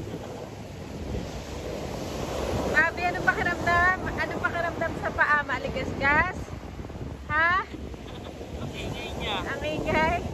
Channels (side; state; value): both; identical; correlation 1.00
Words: Bobby, anong pakiramdam? Anong pakiramdam sa paa? Maligas-gas? Ha? Ang ingay niya. Ang ingay?